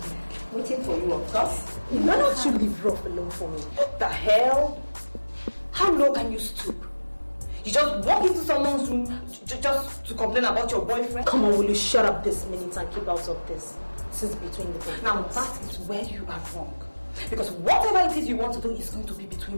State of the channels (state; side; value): inverted; both; correlation -1.00